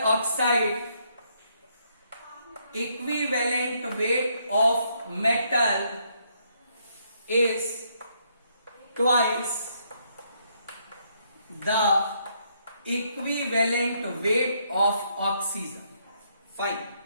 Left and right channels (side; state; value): both; inverted; correlation -0.73